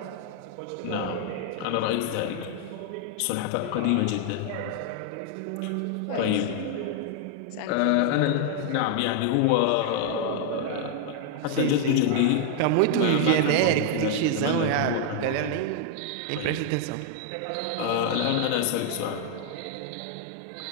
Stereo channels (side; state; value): both; different; correlation 0.00